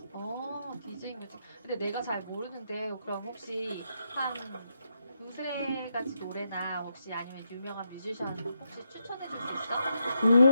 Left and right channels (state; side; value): inverted; both; correlation -0.82